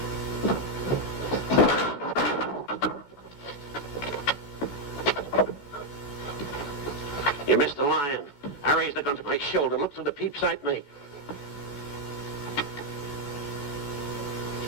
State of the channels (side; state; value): right; late; 14 ms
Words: You missed the lion. I raised the gun to my shoulder, looked through the peep sight, and